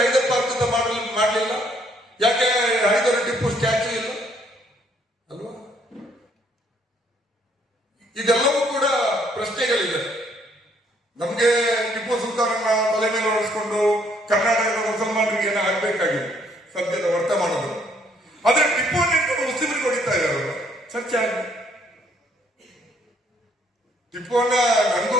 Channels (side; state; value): both; normal; correlation 0.66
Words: ಹೈದರ್ ಪಾರ್ಕ್ ಅಂತ ಮಾಡಲಿಲ್ಲ? ಯಾಕೆ ಹೈದರ್ ಟಿಪ್ಪು ಸ್ಟ್ಯಾಚ್ಯೂ ಇಲ್ಲ ಅಲ್ವಾ? ಇದೆಲ್ಲವೂ ಕೂಡ ಪ್ರಶ್ನೆಗಳಿದೆ. ನಮ್ಗೆ ಟಿಪ್ಪು ಸುಲ್ತಾನನ್ನ ತಲೆ ಮೇಲೆ ಹೊರಿಸ್ಕೊಂಡು ಕರ್ನಾಟಕದ ಮುಸಲ್ಮಾನರಿಗೆ ಏನೋ ಆಗ್ಬೇಕಾಗಿದೆ.